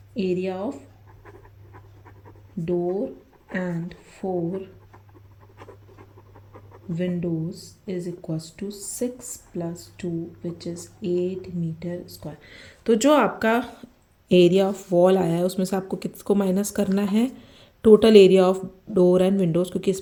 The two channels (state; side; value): identical; both; correlation 1.00